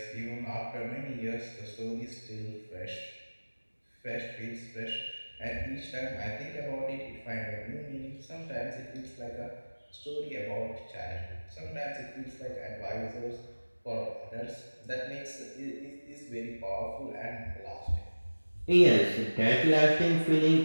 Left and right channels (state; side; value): inverted; both; correlation -1.00